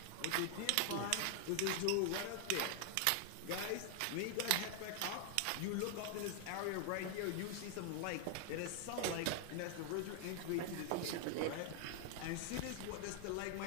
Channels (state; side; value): different; both; correlation 0.00